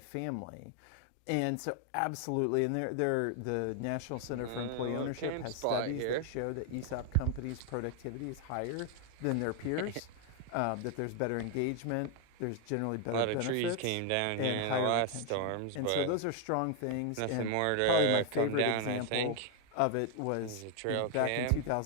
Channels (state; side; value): different; both; correlation 0.00